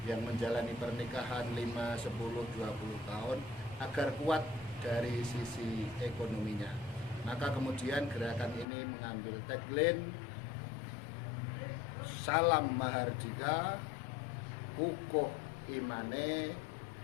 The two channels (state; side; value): drops out; right; at 8.7 s